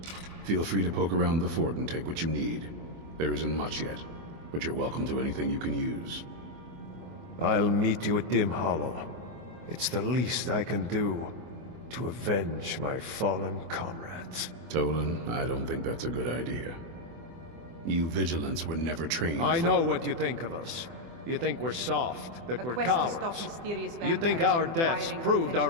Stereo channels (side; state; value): left; late; 24 ms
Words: Feel free to poke around the fort and take what you need. There isn't much yet, but you're welcome to anything you can use. I'll meet you at Dim Hollow. It's the least I can do to avenge my fallen comrades. Tolan, I don't think that's a good idea. You Vigilants were never trained I know what you think of us. You think we're soft, that we're cowards. You think our deaths proved